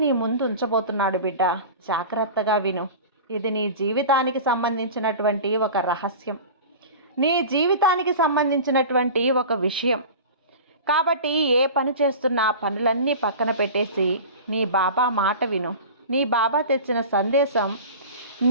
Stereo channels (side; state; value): both; inverted; correlation -0.35